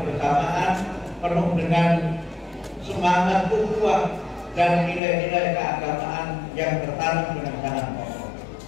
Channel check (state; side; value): drops out; right; at 5.0 s